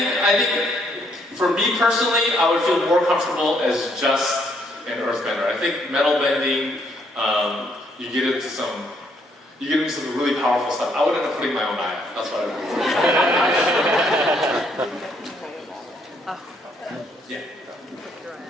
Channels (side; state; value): both; normal; correlation 0.70